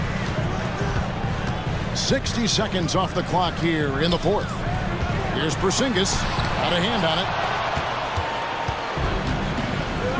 60 seconds off the clock here in the 4th. Here's Porzingis. Got a hand on it.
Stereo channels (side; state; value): both; identical; correlation 1.00